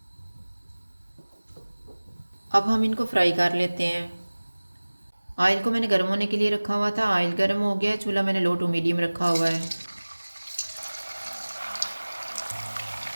अब हम इनको फ्राई कर लेते हैं। ऑयल को मैंने गर्म होने के लिए रखा हुआ था। ऑयल गर्म हो गया। चूल्हा मैंने लो टू मीडियम रखा हुआ है।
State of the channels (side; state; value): both; inverted; correlation -1.00